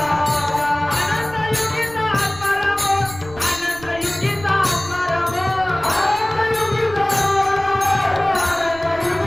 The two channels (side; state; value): right; noise; rumble, 18 dB below the sound